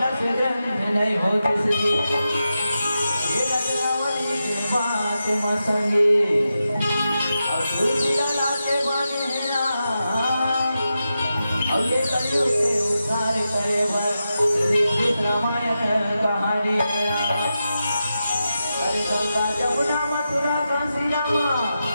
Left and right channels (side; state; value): both; inverted; correlation -0.89